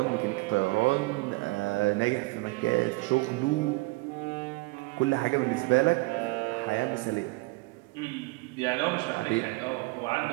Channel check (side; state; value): left; quieter; 23.9 dB